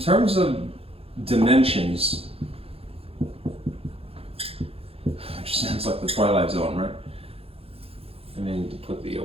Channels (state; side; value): late; left; 0.28 ms